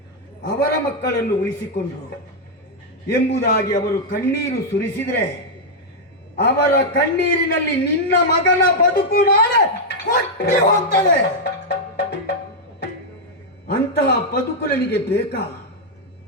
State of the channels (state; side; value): normal; both; correlation -0.02